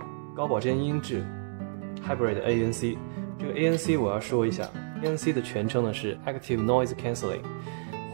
高保真音质 Hybrid ANC， 这个 ANC 我要说一下， ANC 的全称呢是 Active Noise Cancelling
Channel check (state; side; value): silent; left; 58 dB below the other